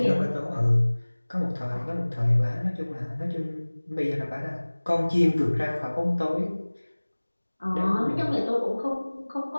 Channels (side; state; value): both; inverted; correlation -1.00